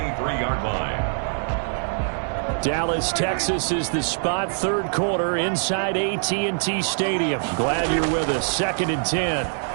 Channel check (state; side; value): silent; left; digital silence